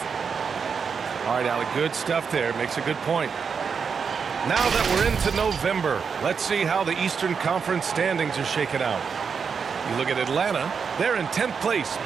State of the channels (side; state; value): left; quieter; 6.1 dB